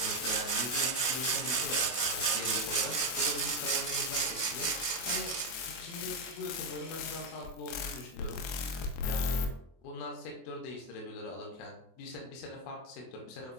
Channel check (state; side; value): late; right; 24 ms